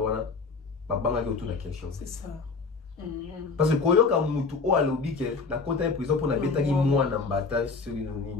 banga qui autour de la question. C'est ça. Parce que quand il y a mutu au alobi que la côté de prison pour la bêta qui moi na mbata sur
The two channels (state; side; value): quieter; right; 4.4 dB